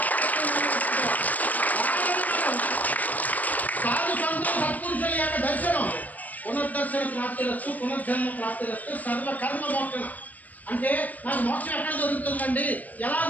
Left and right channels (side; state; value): right; late; 0.079 ms